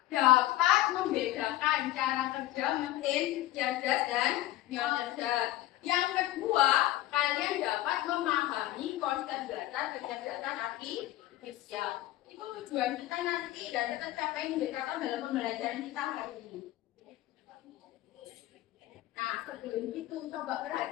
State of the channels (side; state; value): right; quieter; 15.5 dB